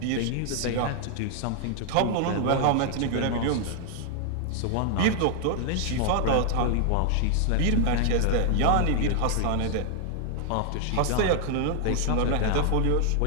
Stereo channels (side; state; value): both; different; correlation 0.00